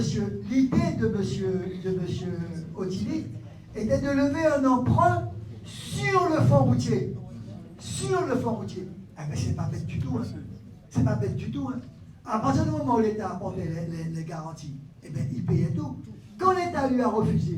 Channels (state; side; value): identical; both; correlation 1.00